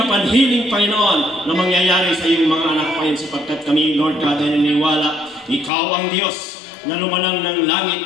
upon healing, Panginoon, na mangyayari sa iyong mga anak, Panginoon, sapagkat kami, Lord God, ay naniniwala, Ikaw ang Diyos na lumanang ng langit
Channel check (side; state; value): right; drops out; at 5.7 s